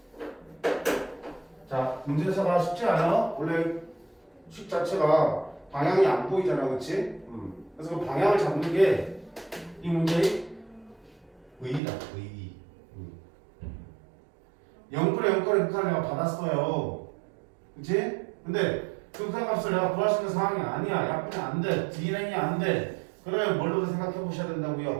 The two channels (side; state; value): left; drops out; at 11.8 s